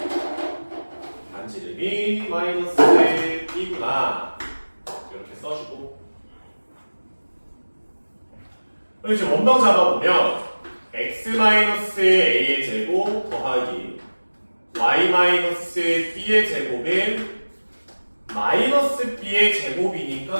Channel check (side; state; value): both; inverted; correlation -1.00